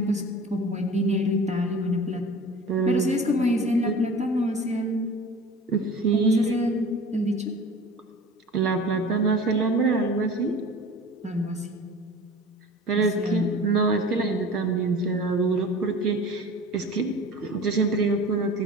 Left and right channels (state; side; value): normal; both; correlation 0.40